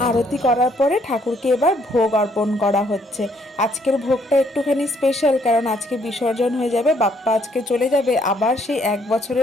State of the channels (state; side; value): normal; both; correlation 0.68